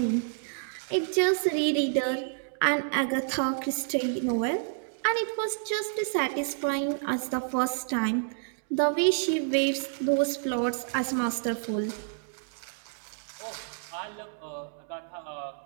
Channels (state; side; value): silent; left; digital silence